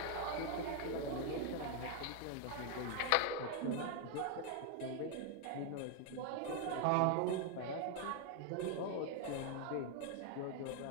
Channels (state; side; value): different; both; correlation 0.01